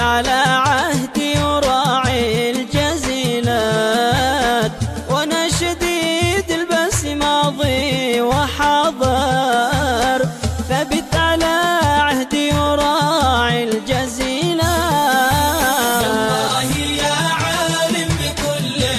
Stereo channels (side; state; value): both; identical; correlation 1.00